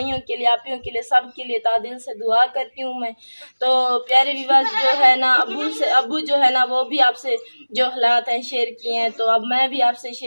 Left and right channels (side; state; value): both; inverted; correlation -1.00